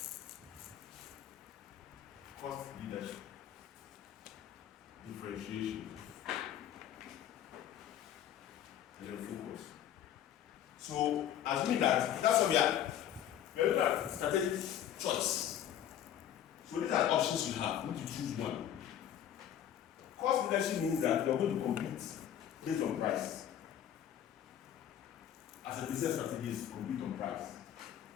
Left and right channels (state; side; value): quieter; right; 10.5 dB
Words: differentiation, and then focus. So, assuming that's what we are looking at strategic choice. So these are options you have. You need to choose one. Cost leadership means that you are going to compete based on price. As a business strategy is compete on price.